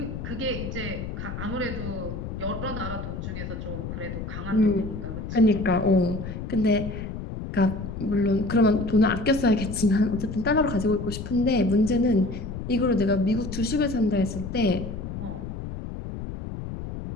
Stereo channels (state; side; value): noise; left; rumble, 7 dB below the sound